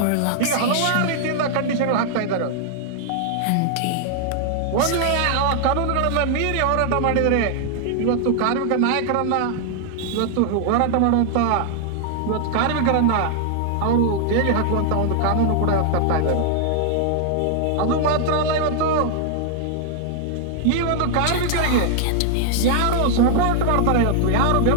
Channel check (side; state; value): both; different; correlation 0.00